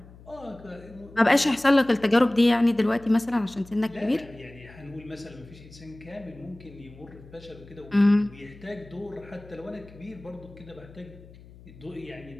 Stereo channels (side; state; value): left; noise; hum, 21 dB below the sound